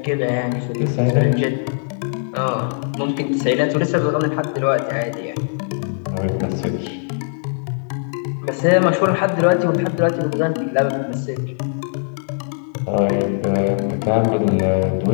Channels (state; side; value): silent; right; digital silence